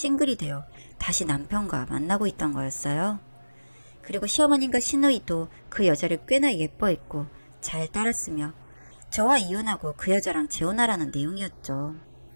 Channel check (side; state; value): both; inverted; correlation -1.00